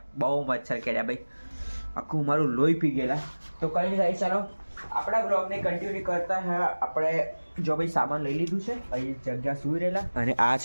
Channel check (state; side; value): inverted; both; correlation -1.00